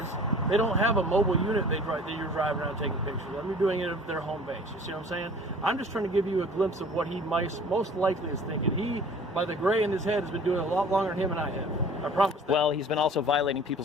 they don't have a mobile unit that you're driving around taking pictures of. They're doing it at their home base. You see what I'm saying? I'm just trying to give you a glimpse of what he most likely is thinking. He, by the gray in his head, has been doing it a lot longer than him and I have. I promise that. Well, he's been also violating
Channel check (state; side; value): normal; both; correlation 0.47